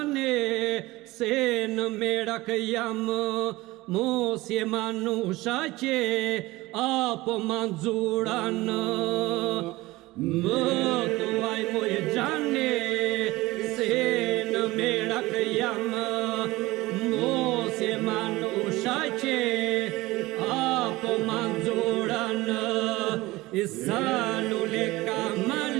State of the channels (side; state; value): left; quieter; 19.8 dB